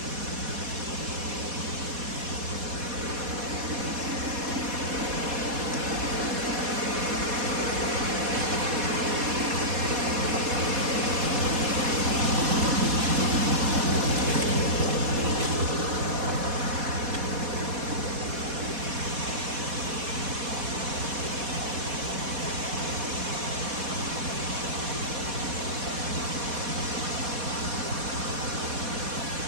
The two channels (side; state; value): left; late; 4.2 ms